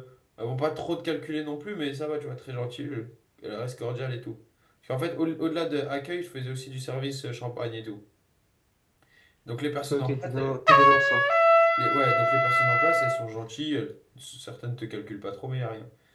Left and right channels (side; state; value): both; identical; correlation 1.00